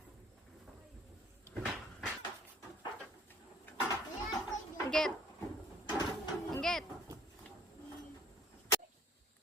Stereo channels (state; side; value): normal; both; correlation 0.55